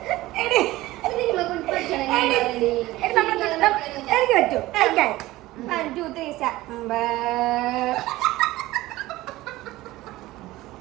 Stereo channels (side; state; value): left; quieter; 17.7 dB